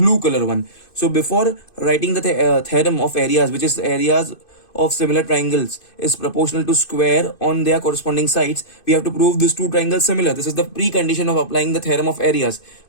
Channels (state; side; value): late; right; 2.5 ms